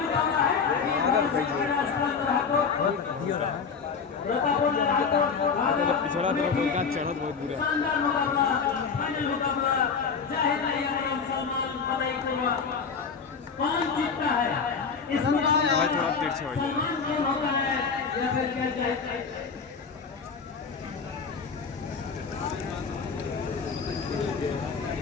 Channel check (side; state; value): right; quieter; 5.7 dB